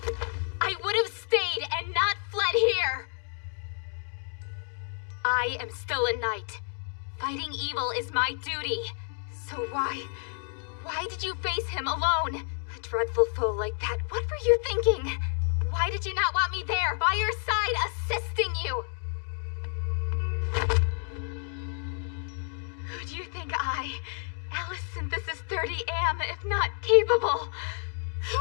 have stayed and not fled here! I am still a knight. Fighting evil is my duty. So why did you face him alone? A dreadful foe like that, what were you thinking? Why did you not want me there, by your side, assisting you? Who do you think I, Alice Synthesis 30, am, if not capable?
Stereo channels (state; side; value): silent; right; 55 dB below the other